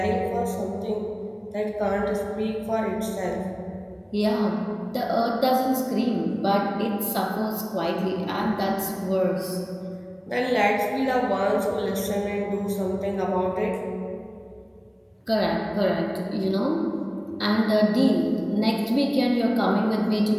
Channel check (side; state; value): both; identical; correlation 1.00